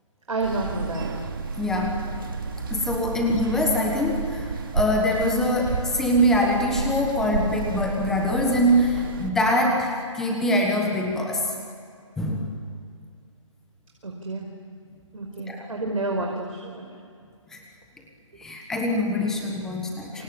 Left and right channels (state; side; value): normal; both; correlation -0.12